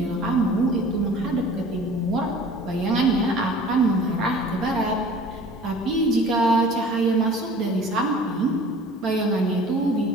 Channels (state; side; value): normal; both; correlation 0.46